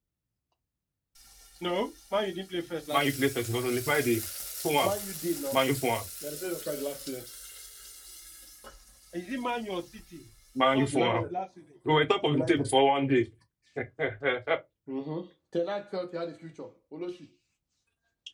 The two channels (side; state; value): both; identical; correlation 1.00